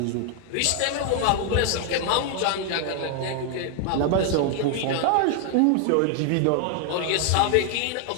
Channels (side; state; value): both; different; correlation 0.00